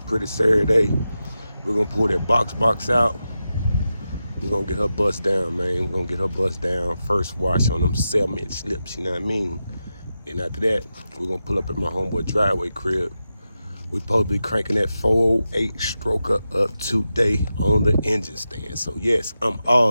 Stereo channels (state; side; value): inverted; both; correlation -0.90